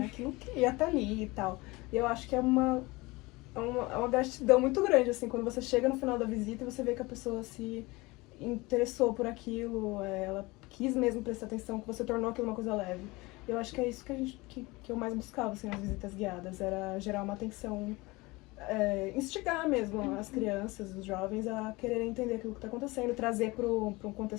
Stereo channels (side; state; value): right; quieter; 22.8 dB